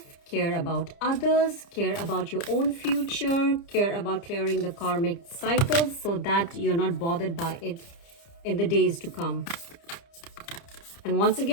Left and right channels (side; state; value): right; late; 30 ms